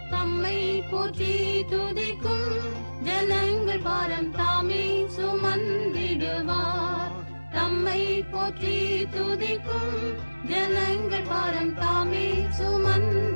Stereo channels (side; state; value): both; inverted; correlation -1.00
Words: தம்மை போற்றி துதிக்கும் ஜனங்கள் பாரம் தாமே சுமந்திடுவார், தம்மை போற்றி துதிக்கும் ஜனங்கள் பாரம் தாமே